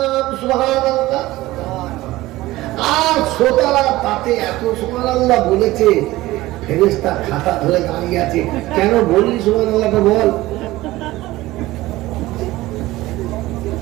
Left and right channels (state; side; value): quieter; left; 17.8 dB